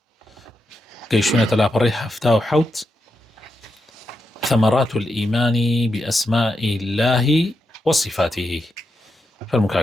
قيشونة الأبريح هفتا وحوت ثمرات الإيمان بأسماء الله وصفاته.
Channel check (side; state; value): both; normal; correlation 0.85